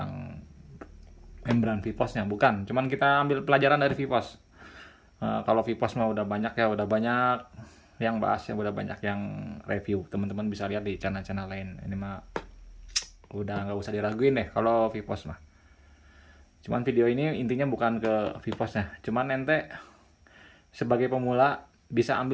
membran VPOS-nya, bukan. Cuman kita ambil pelajaran dari VPOS. Kalau VPOS mah udah banyak ya, udah banyak yang bahas ya, udah banyak yang review. Teman-teman bisa lihat di channel-channel lain. Ini mah udah nggak usah diraguin deh kalau VPOS mah. Cuman video ini intinya bukan ke VPOS-nya. Cuman ente sebagai pemula bisa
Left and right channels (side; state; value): both; identical; correlation 1.00